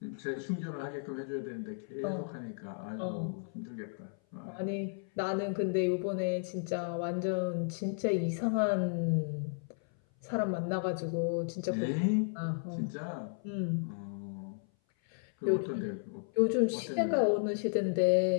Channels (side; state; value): right; silent; 55 dB below the other